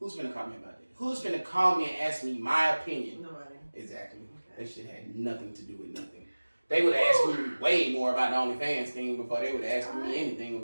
finna call me about that? Who's finna call me and ask me my opinion? Nobody. Exactly. Okay. That shit had nothing to do with nothing. They would have asked me way more about the OnlyFans thing before they would have asked me anything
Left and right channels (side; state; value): both; inverted; correlation -1.00